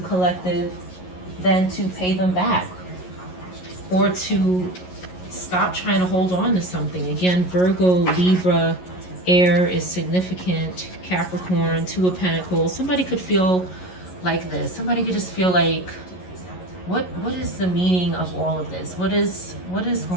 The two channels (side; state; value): right; late; 11 ms